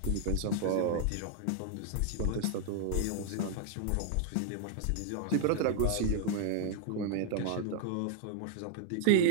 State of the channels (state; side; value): different; both; correlation 0.00